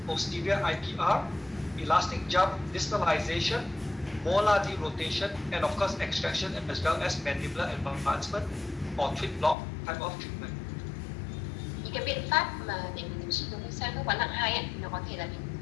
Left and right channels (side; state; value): right; drops out; at 9.6 s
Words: posterior IPR, elastic jump, distalization, molar derotation, and of course extraction, as well as mandibular advancement or twin block type of treatment. Những cái biện pháp mà để mình điều trị đối với sai khớp quán nặng 2 ấy, nó có thể là